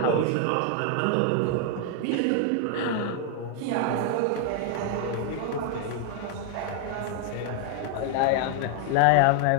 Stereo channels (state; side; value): different; both; correlation 0.00